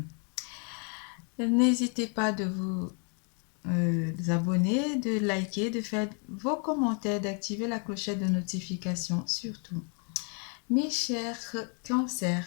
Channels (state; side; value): quieter; right; 39.1 dB